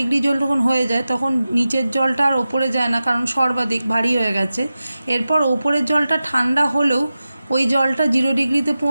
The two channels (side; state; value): both; inverted; correlation -0.94